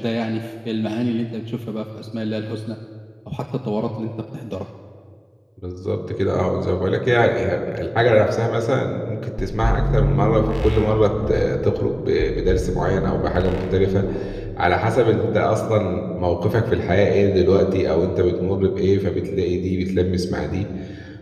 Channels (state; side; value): identical; both; correlation 1.00